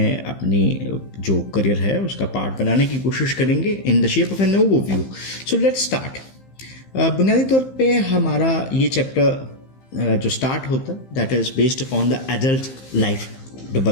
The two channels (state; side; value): late; right; 15 ms